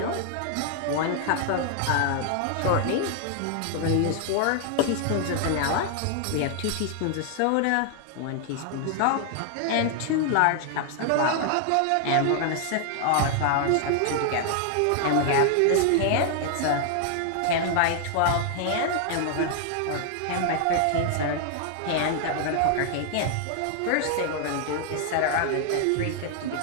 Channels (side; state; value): both; different; correlation 0.00